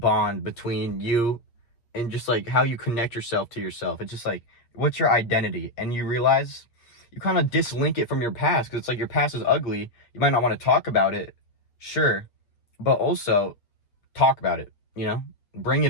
between you and just like how you connect yourself to yourself. It's just like, what's your identity? And you realize you kind of dislink it from your past because it's like your past is ugly. You might not want to talk about it, sure, but also talk about it, you know? Bring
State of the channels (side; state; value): right; late; 8.5 ms